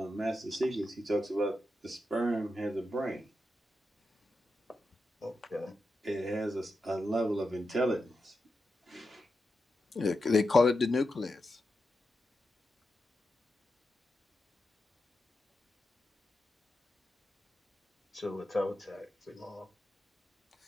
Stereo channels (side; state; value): both; normal; correlation 0.88